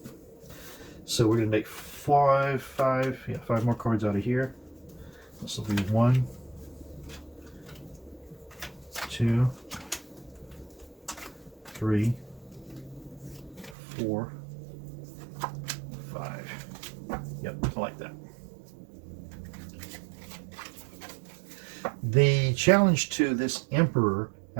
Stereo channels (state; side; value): drops out; left; at 13.8 s